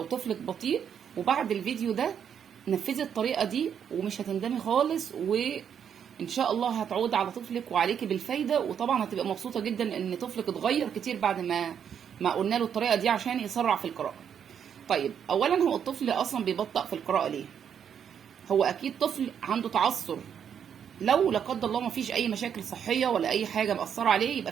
طفلك بطيء، وبعد الفيديو ده نفذي الطريقة دي ومش هتندمي خالص، وان شاء الله هتعود على طفلك وعليكي بالفايدة، وطبعا هتبقى مبسوطة جدا ان طفلك اتغير كتير بعد ما قلنا له الطريقة دي عشان يسرع في القراءة. طيب اولا، هو الطفل اصلا بيبطأ في القراءة ليه؟ هو اكيد طفل عنده تعثر، لو لا قدر الله ما فيش اي مشاكل صحيه ولا اي حاجه مأثره عليه يبقى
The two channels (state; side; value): quieter; left; 8.2 dB